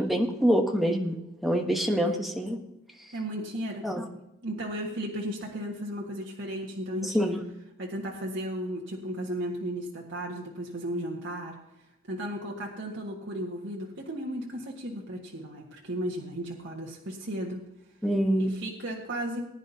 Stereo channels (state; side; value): normal; both; correlation 0.69